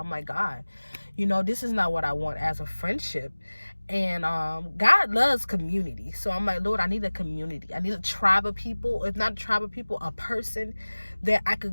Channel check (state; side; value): inverted; both; correlation -1.00